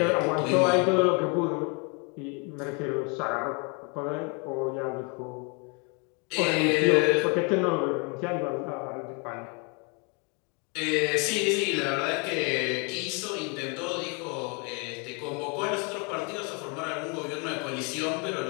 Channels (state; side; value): quieter; right; 32.0 dB